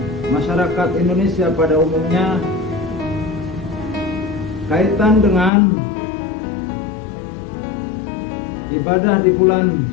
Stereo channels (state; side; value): drops out; right; at 5.5 s